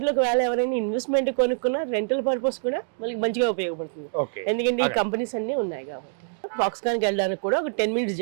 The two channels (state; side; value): silent; left; digital silence